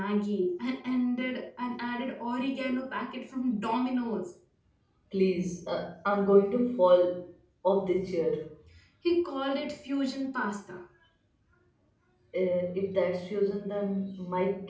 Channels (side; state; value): both; identical; correlation 1.00